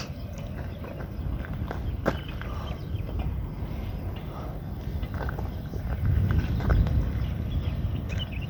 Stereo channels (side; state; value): both; identical; correlation 1.00